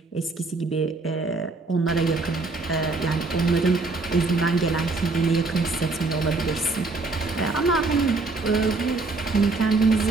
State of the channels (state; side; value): quieter; left; 3.6 dB